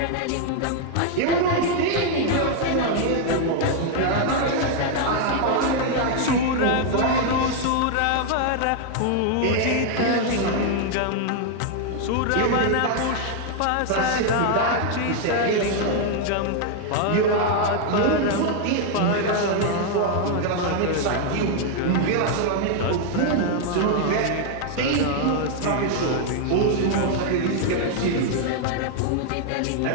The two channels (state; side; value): different; both; correlation 0.00